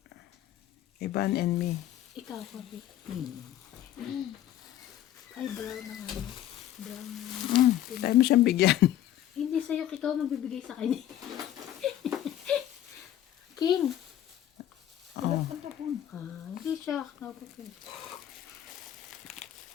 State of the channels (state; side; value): quieter; right; 12.0 dB